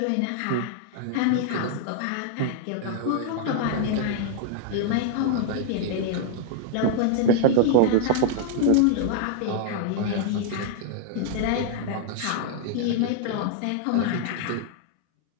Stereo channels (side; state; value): both; different; correlation 0.00